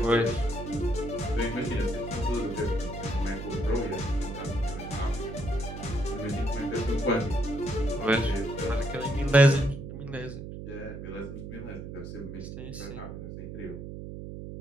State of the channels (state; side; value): noise; right; hum, 9 dB below the sound